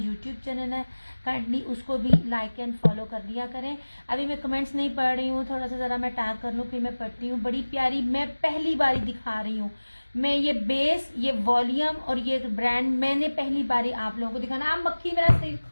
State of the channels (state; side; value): inverted; both; correlation -1.00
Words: चैनल है। काइंडली उसको भी लाइक एंड फॉलो कर दिया करें। अभी मैं कमेंट्स नहीं पढ़ रही हूँ, थोड़ा सा ज़रा मैं टैग कर लूँ फिर मैं पढ़ती हूँ। बड़ी प्यारी, मैं पहली बारी दिखा रही हूँ। मैं ये बेस, ये वॉल्यूम और ये ब्रांड मैंने पहली बारी आप लोगों को दिखाना। आप मक्खी मेरा सिर